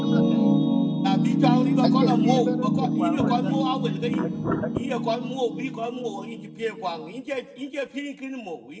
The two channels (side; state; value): both; identical; correlation 1.00